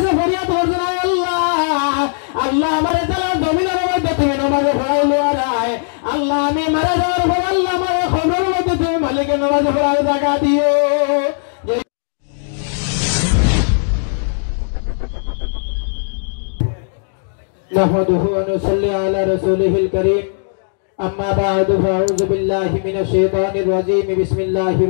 ফরিয়াদ করছেন, আল্লাহ আল্লাহ আমারে তাআলা জমিনের মধ্যে তুমি নামাজে পড়াইলো আরায়, আল্লাহ আমি মারা যাওয়ার পর আল্লাহ আমারে কবরের মধ্যে তুমি মালিকের নামাজে পড়ার জায়গা দিও। نحمده ونصلي على رسوله الكريم أما بعد فأعوذ بالله من الشيطان الرجيم بسم الله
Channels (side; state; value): right; silent; digital silence